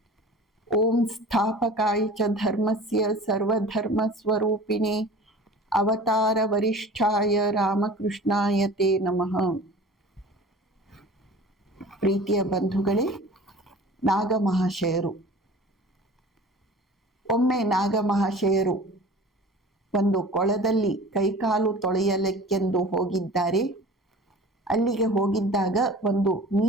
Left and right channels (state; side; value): normal; both; correlation 0.42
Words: ಓಂ ಸ್ಥಾಪಕಾಯ ಚ ಧರ್ಮಸ್ಯ ಸರ್ವಧರ್ಮ ಸ್ವರೂಪಿಣೆ ಅವತಾರ ವರಿಷ್ಠಾಯ ರಾಮಕೃಷ್ಣಾಯ ತೇ ನಮಃ. ಪ್ರೀತಿಯ ಬಂಧುಗಳೇ, ನಾಗಮಹಾಶಯರು. ಒಮ್ಮೆ ನಾಗಮಹಾಶಯರು ಒಂದು ಕೊಳದಲ್ಲಿ ಕೈಕಾಲು ತೊಳೆಯಲಿಕ್ಕೆಂದು ಹೋಗಿದ್ದಾರೆ. ಅಲ್ಲಿಗೆ ಹೋಗಿದ್ದಾಗ ಒಂದು